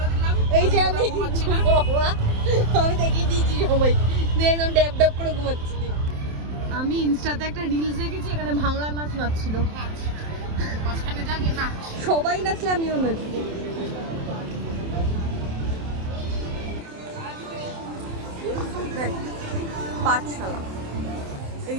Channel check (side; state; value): left; late; 27 ms